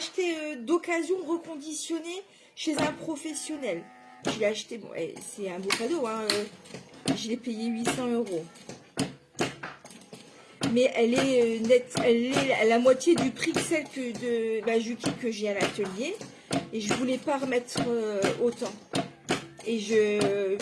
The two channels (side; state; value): both; identical; correlation 1.00